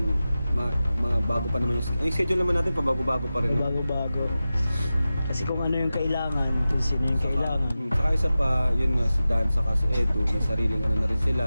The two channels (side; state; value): both; inverted; correlation -0.94